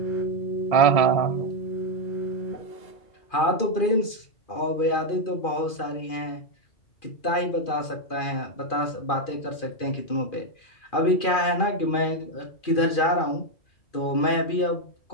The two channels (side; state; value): right; late; 2.4 ms